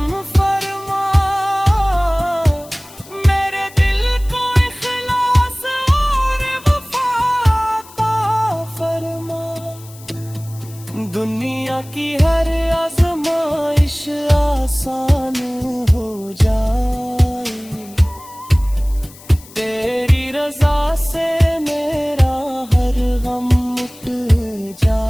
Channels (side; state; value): left; noise; hiss, 21 dB below the sound